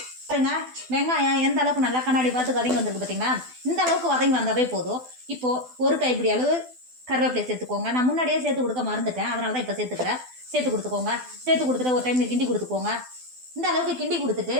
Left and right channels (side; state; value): left; late; 12 ms